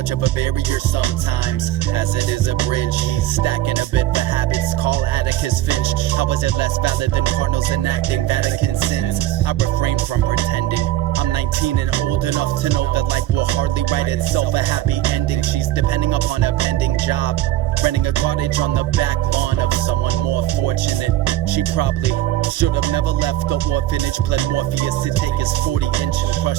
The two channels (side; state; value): left; quieter; 13.8 dB